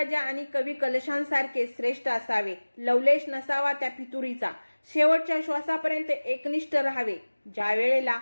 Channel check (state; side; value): inverted; both; correlation -1.00